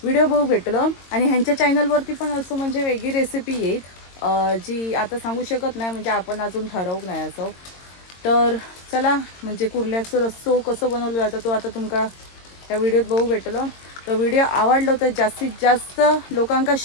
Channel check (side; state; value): right; late; 22 ms